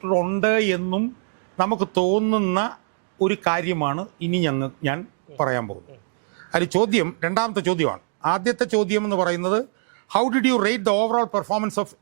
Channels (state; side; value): silent; left; digital silence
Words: എന്നും നമുക്ക് തോന്നുന്ന ഒരു കാര്യമാണ് ഇനി ഞാൻ പറയാൻ പോകുന്നത്. അത് രണ്ടാമത്തെ ചോദ്യമാണ്. ആദ്യത്തെ ചോദ്യം എന്ന് പറയുന്നത് how did U rate the overall performance of